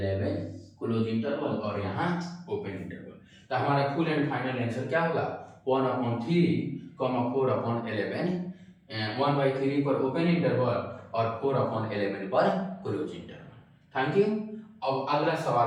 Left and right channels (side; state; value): both; identical; correlation 1.00